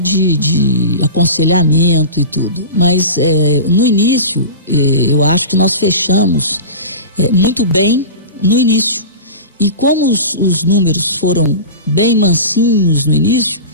aconselhamento e tudo, mas no início, eu acho que nós fechamos muito bem no início. E como os números foram bem mansinhos no início,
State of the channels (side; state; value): both; inverted; correlation -0.31